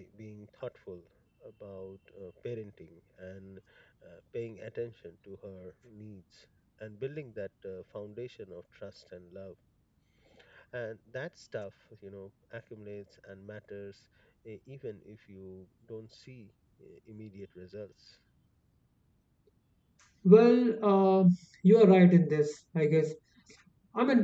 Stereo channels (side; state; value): both; identical; correlation 1.00